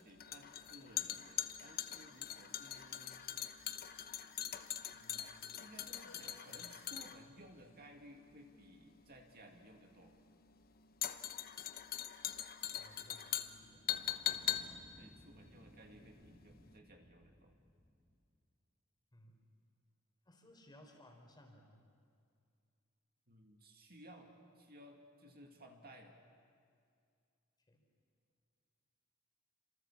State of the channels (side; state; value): right; quieter; 9.8 dB